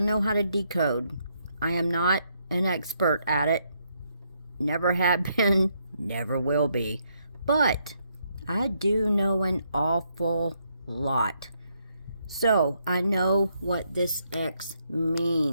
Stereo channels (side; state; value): both; inverted; correlation -0.76